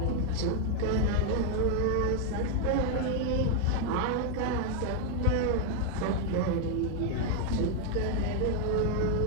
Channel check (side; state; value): both; different; correlation 0.00